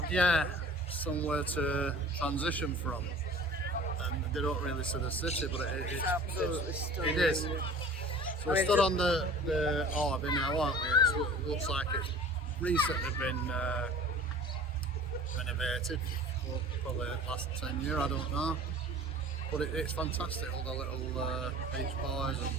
Yeah, somewhere to transition from. And they don't really see the city, but it's absolutely stunning. It is. So we stood on the harbour now, aren't we? It looks like it's recently been renovated, probably the last 10 years, I don't know. But it's fantastic, all the little beach bars and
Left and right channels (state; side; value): normal; both; correlation 0.44